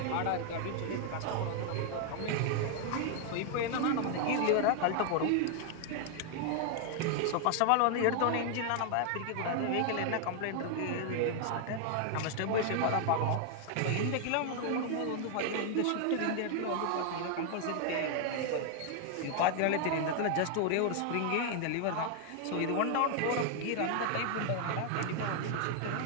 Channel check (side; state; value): both; different; correlation 0.00